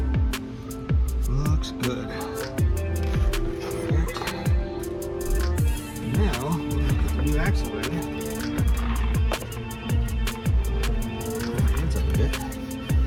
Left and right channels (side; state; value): both; identical; correlation 1.00